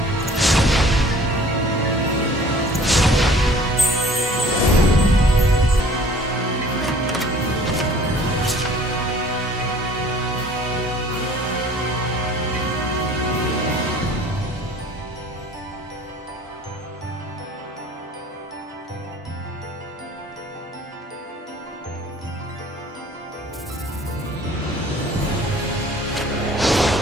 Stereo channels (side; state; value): both; normal; correlation 0.51